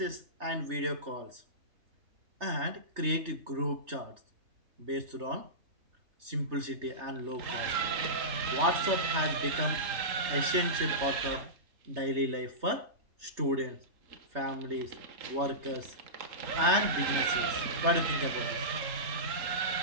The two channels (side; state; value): left; late; 3.3 ms